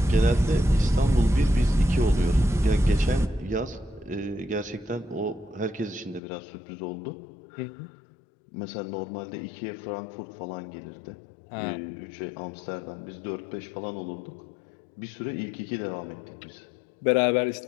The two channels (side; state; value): right; drops out; at 6.2 s